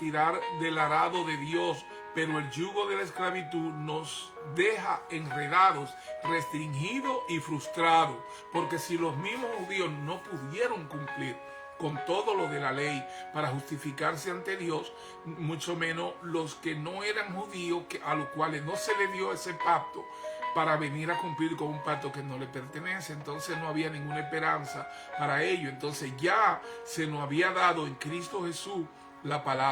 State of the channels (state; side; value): identical; both; correlation 1.00